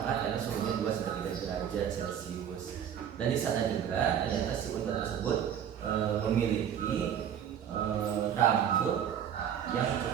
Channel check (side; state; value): left; quieter; 9.0 dB